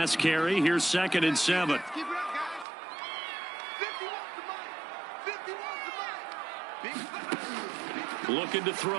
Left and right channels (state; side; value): drops out; left; at 2.7 s